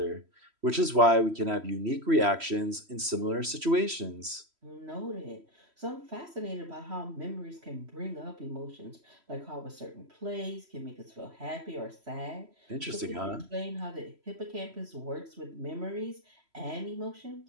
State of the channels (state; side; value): late; left; 3.1 ms